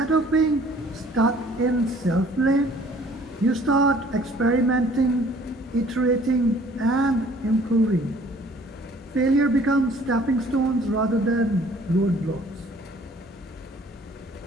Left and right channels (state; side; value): normal; both; correlation 0.55